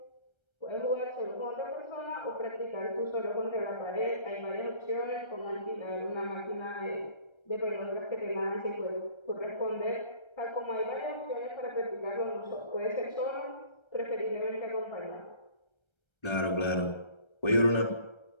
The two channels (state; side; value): late; right; 1.3 ms